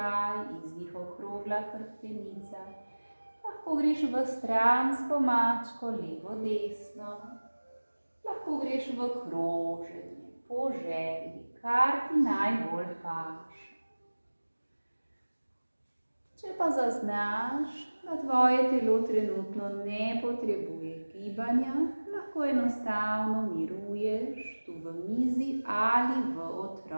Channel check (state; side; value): inverted; both; correlation -1.00